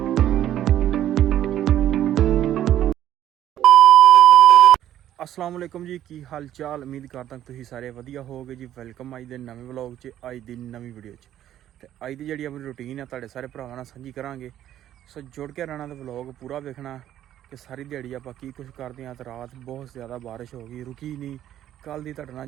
अस्सलाम वालेकुम जी की हाल चाल उम्मीद करता तुसीं सारे वधिया होगे जी वेलकम अज दे नवे व्लॉग च अज दी नवी वीडियो च ते अज दी जिहड़ी अपनी रूटीन है तुहाडे सारे भरावां नाल सांझी करांगे सो जुड़ के रहना ते व्लॉग पूरा वेखना कि सारी दिहाड़ी आपां की कुछ करदे हां ते रात बहुत ज़्यादा बारिश हो गई रुकी नहीं कल दी तुहाडे नाल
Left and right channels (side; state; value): left; quieter; 11.9 dB